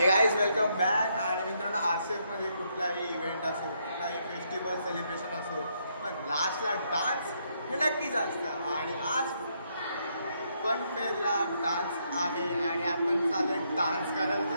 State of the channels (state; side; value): inverted; both; correlation -0.75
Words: गाईज वेलकम बॅक. आणि मित्रांनो RCF मध्ये कुठलाही इव्हेंट असो कुठलाही फेस्टिवल सेलिब्रेशन असो पण लास्टला डान्स हे नक्कीच असतं. आणि आज फन फेअरला डान्स आहे आणि आपण चालत डान्स